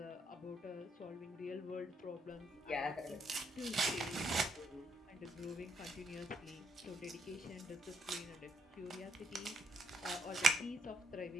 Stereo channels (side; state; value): both; normal; correlation 0.72